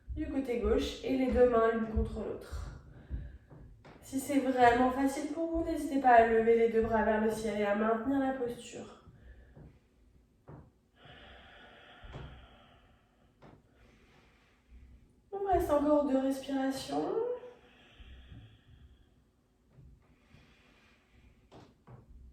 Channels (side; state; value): both; identical; correlation 1.00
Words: du côté gauche et les 2 mains l'une contre l'autre. Si c'est vraiment facile pour vous, n'hésitez pas à lever les 2 bras vers le ciel et à maintenir la posture. On reste encore 2 respirations.